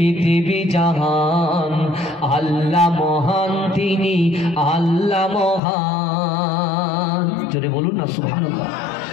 জাহান, আল্লাহ মহান তিনি আল্লাহ মহান। জোরে বলুন না সুবহানাল্লাহ।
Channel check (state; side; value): drops out; right; at 5.6 s